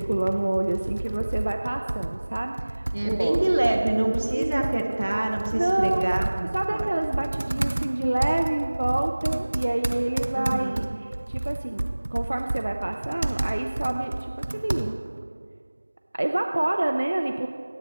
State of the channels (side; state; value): both; inverted; correlation -1.00